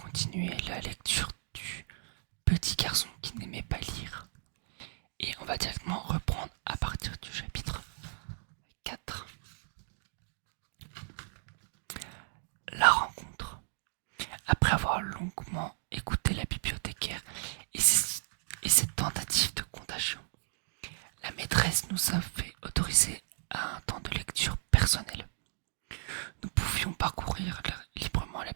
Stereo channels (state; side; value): silent; left; digital silence